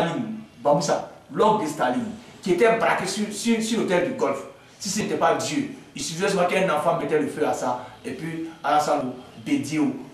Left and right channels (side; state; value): both; identical; correlation 1.00